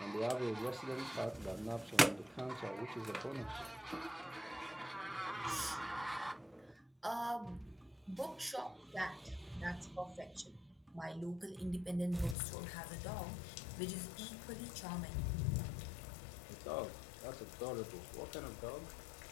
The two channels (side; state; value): right; drops out; at 12.4 s